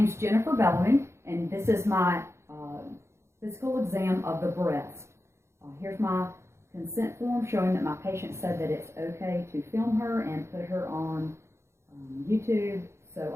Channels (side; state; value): left; late; 0.13 ms